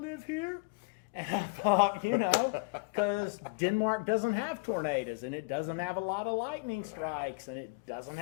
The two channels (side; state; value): right; quieter; 30.3 dB